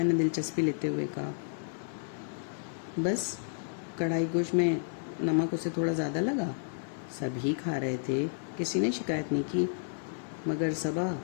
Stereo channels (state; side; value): silent; right; 57 dB below the other